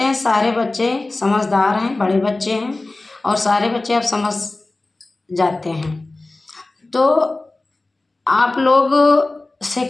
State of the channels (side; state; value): right; quieter; 3.1 dB